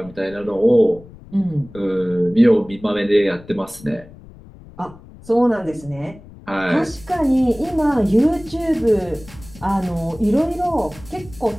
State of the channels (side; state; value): left; noise; rumble, 20 dB below the sound